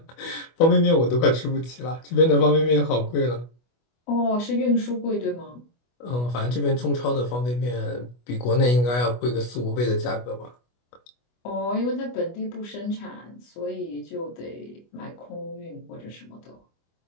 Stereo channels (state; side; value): late; right; 25 ms